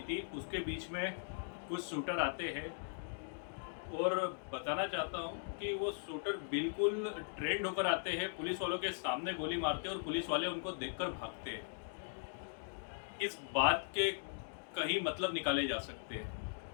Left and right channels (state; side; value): silent; right; digital silence